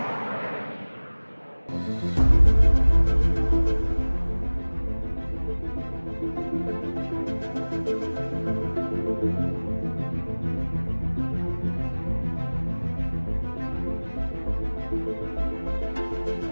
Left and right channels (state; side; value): inverted; both; correlation -1.00